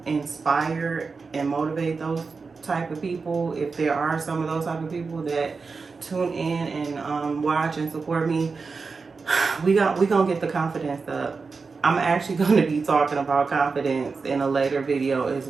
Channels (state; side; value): quieter; left; 4.6 dB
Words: inspire and motivate those type of people. If there are some of those type of people that tune in and watch and support me, we gonna get the confidence up. I'm actually going to be talking about confidence in a later video as